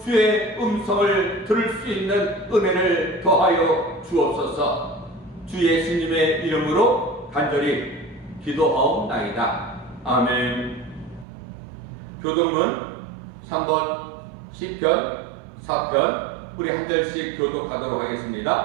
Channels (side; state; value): left; drops out; at 11.2 s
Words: 주의 음성을 들을 수 있는 은혜를 더하여 주옵소서. 주 예수님의 이름으로 간절히 기도하옵나이다. 아멘. 교독문 3번 시편 4편 우리 한 절씩 교독하도록